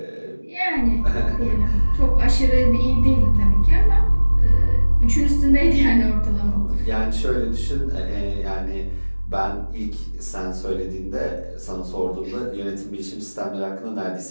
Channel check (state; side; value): inverted; both; correlation -1.00